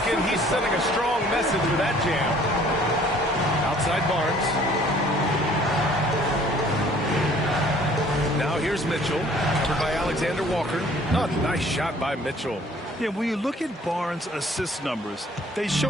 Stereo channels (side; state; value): both; normal; correlation 0.56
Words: he's sending a strong message with that jam. Outside Barnes. Now here's Mitchell. Covered by Alexander Walker. Oh, nice shot by Mitchell. Yeah, when you look at Barnes' assist numbers, they